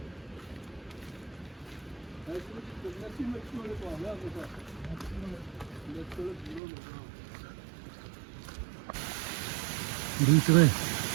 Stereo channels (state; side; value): drops out; left; at 6.6 s